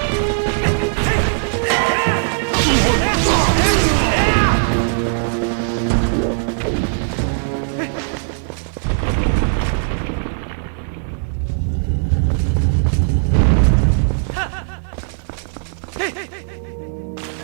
it'll eat your rupees. But it's pretty sexy armor. There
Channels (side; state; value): left; silent; digital silence